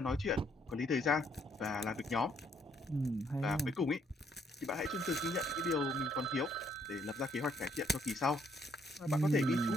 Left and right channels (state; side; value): normal; both; correlation 0.69